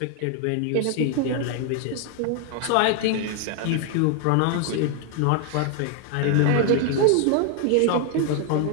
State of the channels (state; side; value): different; both; correlation 0.00